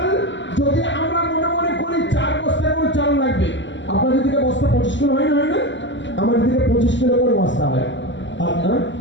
যদি আমরা মনে মনে করি 4 বস্তা করে চাল লাগবে, আপনাদের দিকে বস্তা 25 কিলো হয় না? আমাদের দিকে 25 কিলো করে বস্তা হয়। আপনার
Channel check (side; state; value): right; late; 0.54 ms